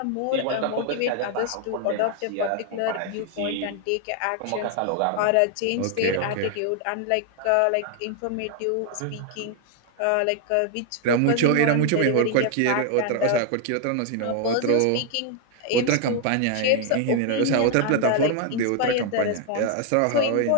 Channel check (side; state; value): both; different; correlation 0.00